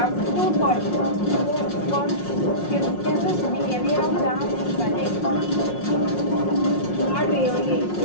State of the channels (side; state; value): right; late; 5.6 ms